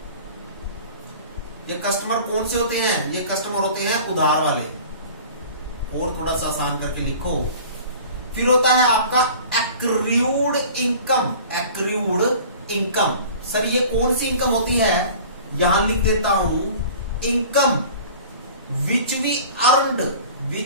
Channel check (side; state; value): both; inverted; correlation -0.43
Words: ये कस्टमर कौन से होते हैं? ये कस्टमर होते हैं उधार वाले, और थोड़ा सा आसान करके लिखो। फिर होता है आपका accrued income, accrued income. Sir ये कौन सी इनकम होती है? यहां लिख देता हूं, income which we earned,